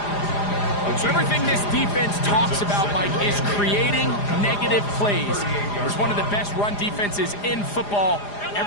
So everything this defense talks about, Mike, is creating negative plays. It's one of the best run defenses in football.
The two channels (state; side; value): late; right; 4.9 ms